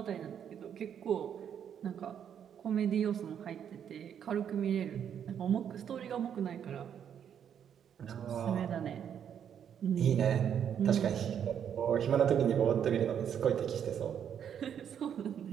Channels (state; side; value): quieter; left; 8.7 dB